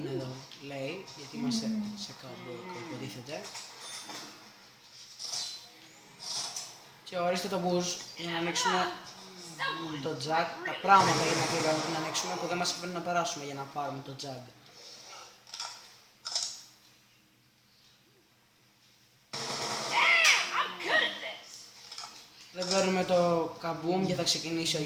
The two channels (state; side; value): identical; both; correlation 1.00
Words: εδώ λέει, γιατί είμαστε σε κάπου υποτίθεται. Και ορίστε το boost για να ανοίξουμε το jack, τα πράγματα για να ανοίξουμε που δεν μας αφήνουν να περάσουμε για να πάρουμε το jack. Δεν παίρνουμε το καμπούμ και θα ξεκινήσει ο